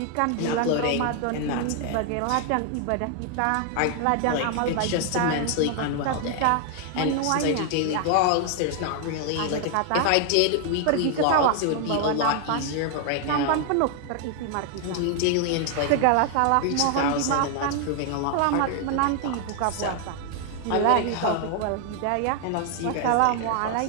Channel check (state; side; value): different; both; correlation 0.00